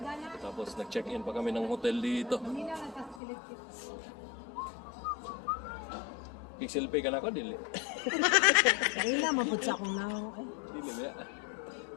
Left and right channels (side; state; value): right; drops out; at 3.2 s